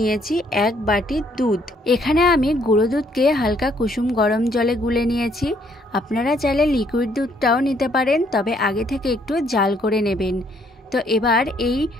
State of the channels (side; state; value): both; normal; correlation 0.67